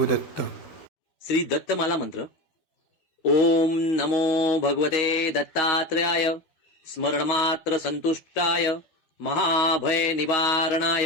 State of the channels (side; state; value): right; late; 12 ms